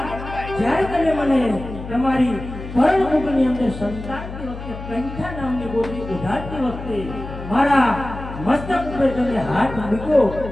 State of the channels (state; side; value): noise; left; hum, 10 dB below the sound